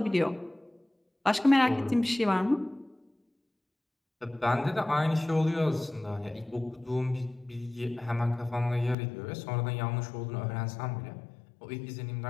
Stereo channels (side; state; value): right; drops out; at 9.0 s